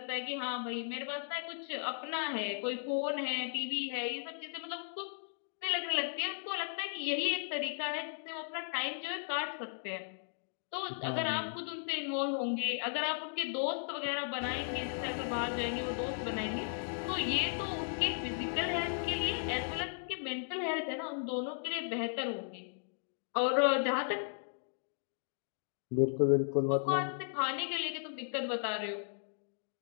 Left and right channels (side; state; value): right; silent; digital silence